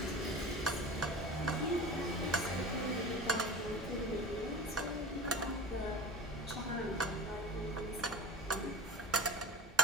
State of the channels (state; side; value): normal; both; correlation 0.34